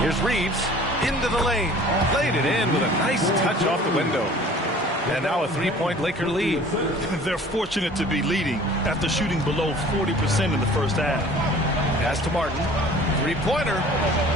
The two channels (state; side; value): normal; both; correlation 0.48